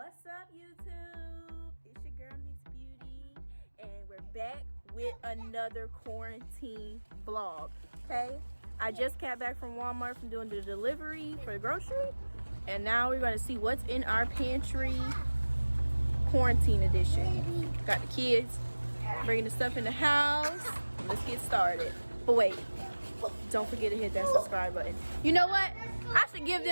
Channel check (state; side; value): inverted; both; correlation -1.00